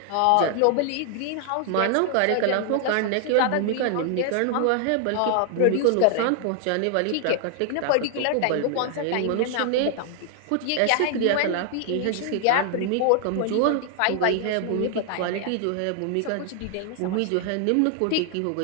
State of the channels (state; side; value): different; both; correlation 0.00